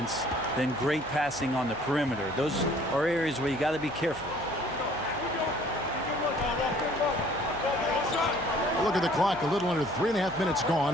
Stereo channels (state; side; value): noise; left; hum, 18 dB below the sound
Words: than great passing on the perimeter. Those are areas where you got to be careful. look at the clock. A little under 3.5 minutes